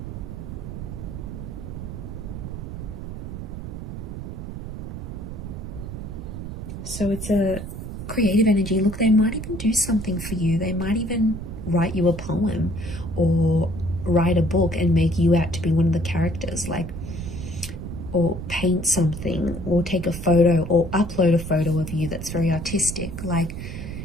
So it's a creative energy. Look, they might even do something for you. They might even write you a poem or write a book and make you out to be one of the characters, like, or paint something, or take a photo, or upload a photo of you that's very artistic. Like,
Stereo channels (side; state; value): right; noise; rumble, 8 dB below the sound